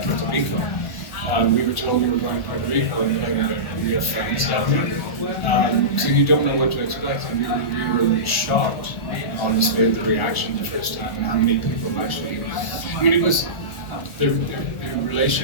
Rico. We were told we were going to Puerto Rico and we have friends down there. So you don't know what to expect. And we were shocked, honestly, at the reaction the first time and how many people actually. I mean, it was the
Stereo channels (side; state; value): right; late; 1.4 ms